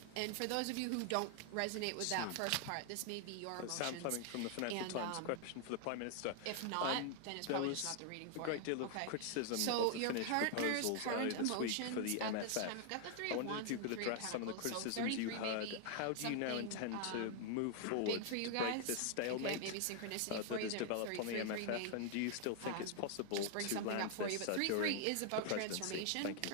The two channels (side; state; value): both; different; correlation 0.00